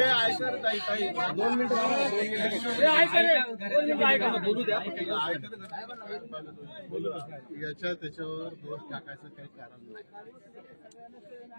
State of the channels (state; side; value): inverted; both; correlation -1.00